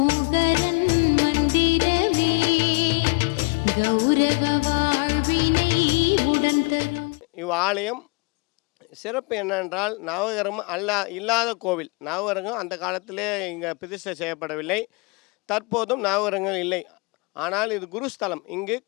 मन्दिरमे गौरव வாழ்வினை உடன் தரும். இவ்வாலயம் சிறப்பு என்னென்றால் நவகிரகம் இல்லாத கோவில். நவகிரகம் அந்த காலத்திலே இங்கே பிரதிஷ்டை செய்யப்படவில்லை. தற்போதும் நவகிரகங்கள் இல்லை. ஆனால் இது குருஸ்தலம். இங்கு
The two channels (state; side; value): quieter; right; 29.2 dB